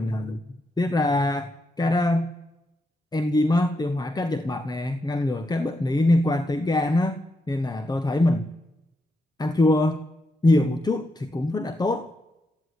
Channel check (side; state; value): both; normal; correlation 0.83